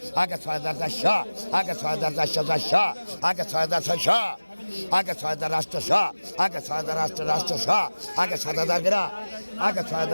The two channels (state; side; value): inverted; both; correlation -1.00